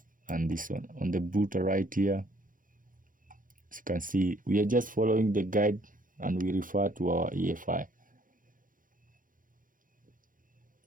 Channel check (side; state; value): left; late; 0.40 ms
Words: and this one. On the booter right here, as you can see, we are just following the guide and we refer to our EFI.